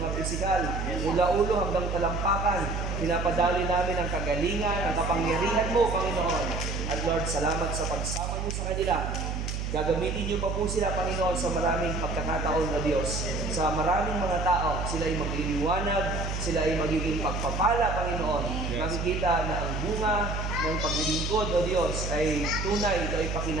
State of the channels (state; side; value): noise; right; hum, 3 dB below the sound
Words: pisikal. Mula ulo hanggang talampakan, pinapadali namin ang kagalingan, ang kapangyarihan mo, Panginoon. At Lord, salamat sa pagsama niyo sa kanila. Gagamitin niyo pa po sila, Panginoon, sa maraming pagkakataon na Diyos. Sa maraming mga tao, sila ay magliliwanag, sila ay magiging pagpapala, Panginoon. Makikita na ang bunga ng paglilingkod, O Diyos, ay tunay, ito ay